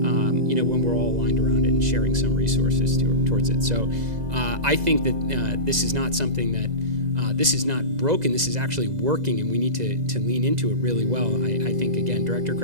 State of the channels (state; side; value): late; left; 2.0 ms